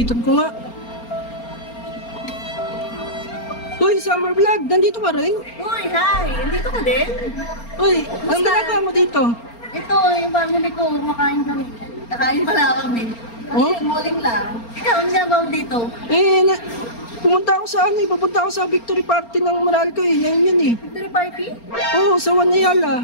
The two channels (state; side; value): late; right; 4.3 ms